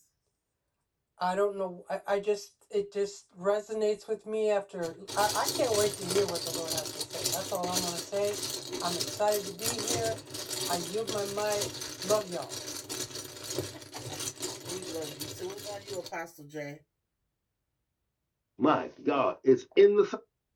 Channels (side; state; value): both; identical; correlation 1.00